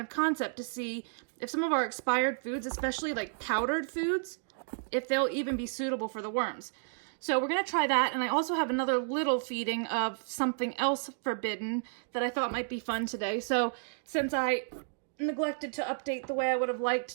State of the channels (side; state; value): left; silent; digital silence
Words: of concept to see if some of our expired foods, especially like powdered foods, if they'll even be suitable for the worms. So we're going to try that, and I also have another little feeding of something else forbidden that I thought might be fun today. So since I neglected to update the way I would have